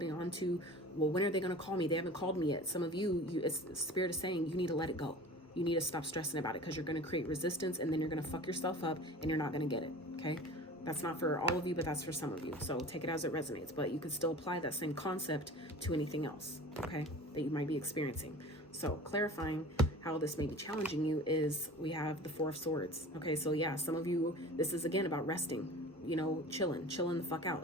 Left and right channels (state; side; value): normal; both; correlation 0.39